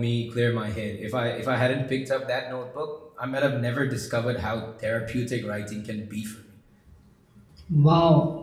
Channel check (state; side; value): identical; both; correlation 1.00